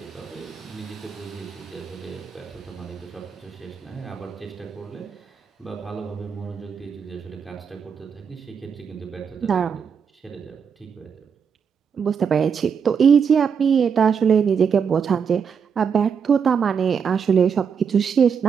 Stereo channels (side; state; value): left; quieter; 6.7 dB